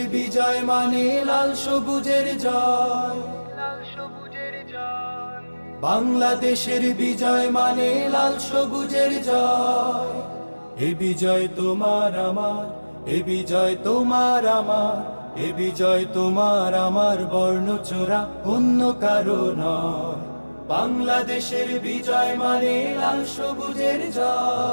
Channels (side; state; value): both; inverted; correlation -1.00